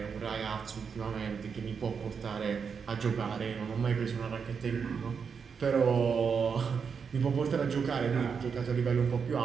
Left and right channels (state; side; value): quieter; left; 6.2 dB